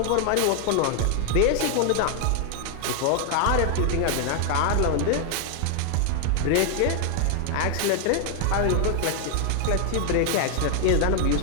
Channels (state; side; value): different; both; correlation 0.00